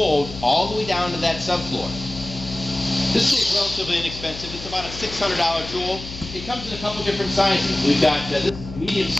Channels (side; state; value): left; noise; hum, 12 dB below the sound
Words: all the way down to that subfloor. This tool is relatively inexpensive. It's about a $600 tool. It comes in a couple different sizes. We've got this is medium